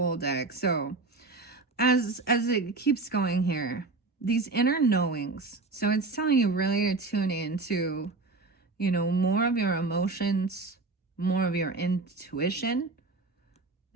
deck. So, as it keeps going here, these inner knowings, so it's telling you really to tune into more of your emotions, more of your intuition,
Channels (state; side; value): quieter; left; 3.5 dB